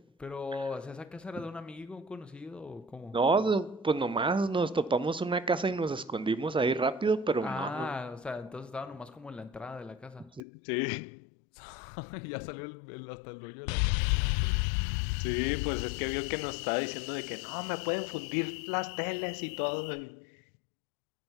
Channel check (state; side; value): drops out; right; at 10.4 s